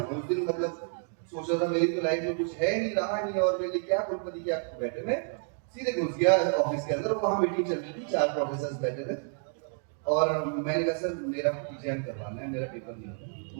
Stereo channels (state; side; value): silent; left; 58 dB below the other